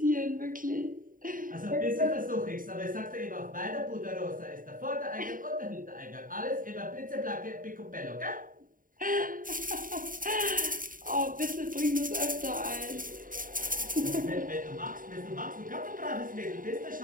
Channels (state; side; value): late; left; 0.40 ms